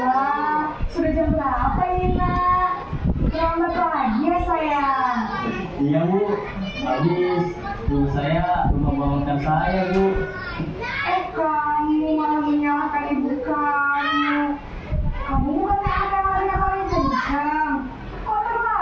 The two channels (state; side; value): identical; both; correlation 1.00